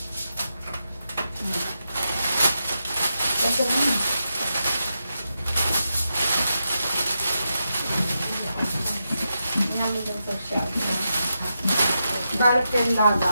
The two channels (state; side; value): inverted; both; correlation -0.87